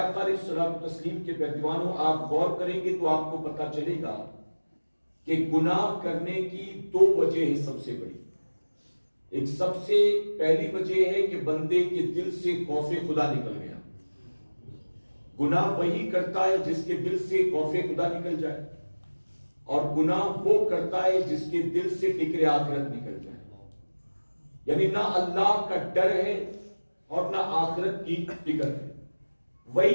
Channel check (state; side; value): inverted; both; correlation -1.00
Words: علیہ الصلوۃ والتسلیم کے پیروانوں، آپ غور کریں گے تو آپ کو پتہ چلے گا کہ گناہ کرنے کی دو وجہ ہیں سب سے بڑی۔ ایک سب سے پہلی وجہ ہے کہ بندے کے دل سے خوف خدا نکل گیا۔ گناہ وہی کرتا ہے جس کے دل سے خوف خدا نکل جائے، اور گناہ وہ کرتا ہے جس کے دل سے فکر آخرت نکل جائے۔ یعنی نہ اللہ کا ڈر ہے اور نہ آخرت کی فکر ہے،